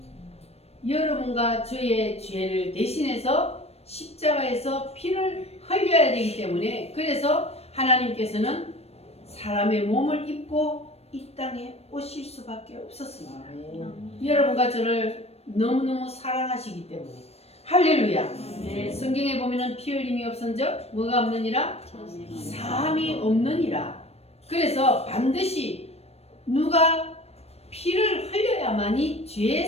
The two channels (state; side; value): late; right; 0.30 ms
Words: 여러분과 저의 죄를 대신해서 십자가에서 피를 흘려야 되기 때문에 그래서 하나님께서는 사람의 몸을 입고 이 땅에 오실 수밖에 없었습니다. 여러분과 저를 너무너무 사랑하시기 때문에. 할렐루야. 성경에 보면은 피 흘림이 없은즉 뭐가 없느니라? 사함이 없느니라. 그래서 반드시 누가 피를 흘려야만이 죄